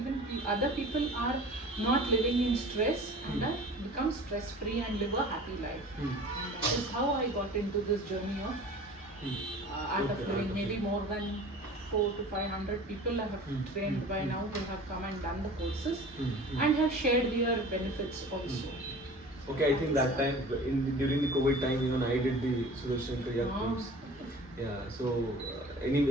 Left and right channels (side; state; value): both; normal; correlation 0.42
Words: other people are not living in stress and become stress free and live a happy life. And that is how I got into this journey of Art of Living. Maybe more than 400 to 500 people I have trained by now who have come and done the courses and have shared their benefits also. Okay, I think that time, during the COVID time, even I did the Sudarshan Kriya course. Yeah, so